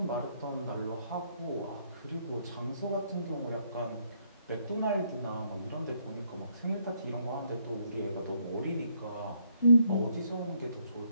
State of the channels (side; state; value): both; inverted; correlation -0.71